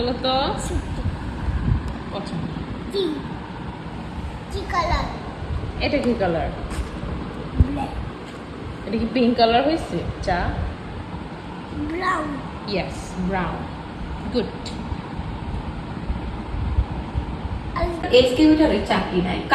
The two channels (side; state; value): both; identical; correlation 1.00